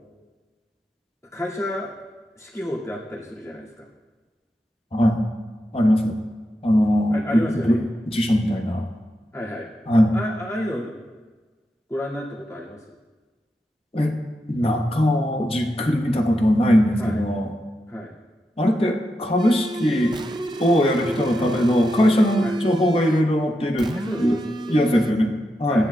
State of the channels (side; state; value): both; normal; correlation 0.87